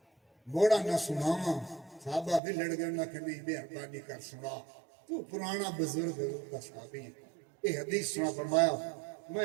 موڑا نہ سناواں، صحابہ بھی لڑ گئے نہ کہ نہیں مہربانی کر سنا، تو پرانا بزرگ حضور کا صحابی ہے، یہ حدیث سنا۔ فرمایا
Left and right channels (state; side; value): drops out; left; at 2.4 s